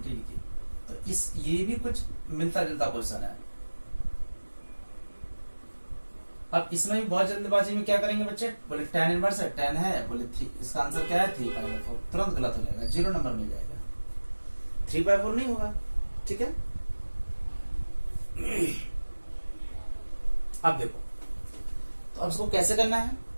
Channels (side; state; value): both; inverted; correlation -1.00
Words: की, तो ये भी कुछ मिलता जुलता क्वेश्चन है। अब इसमें भी बहुत जल्दबाजी में क्या करेंगे बच्चे, बोले tan इनवर्स है, tan है, बोले इसका आंसर क्या है 3/4, तुरंत गलत हो जाएगा, 0 नंबर मिल जाएगा, 3/4 नहीं होगा। ठीक है, अब देखो, तो अब इसको कैसे करना है,